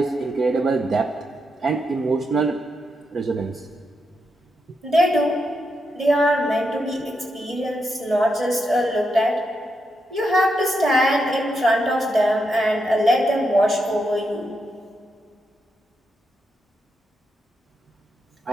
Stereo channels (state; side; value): normal; both; correlation 0.83